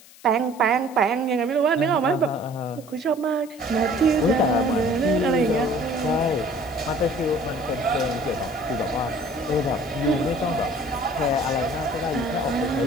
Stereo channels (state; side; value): noise; left; hiss, 22 dB below the sound